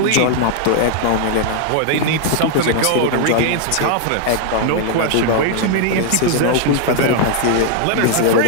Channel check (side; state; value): both; different; correlation 0.00